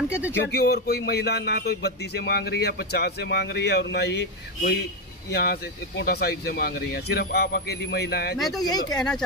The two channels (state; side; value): normal; both; correlation 0.08